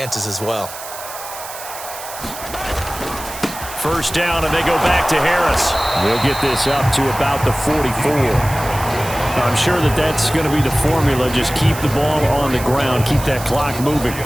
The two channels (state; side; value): noise; right; hiss, 12 dB below the sound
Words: as well. First down, and they go back to Harris. They'll get this up to about the 44. I'm sure that that's going to be the formula. Just keep the ball on the ground. Keep that clock moving.